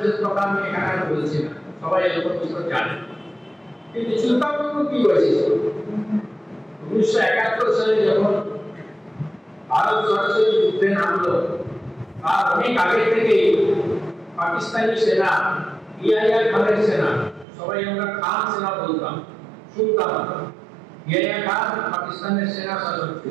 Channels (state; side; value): drops out; left; at 17.4 s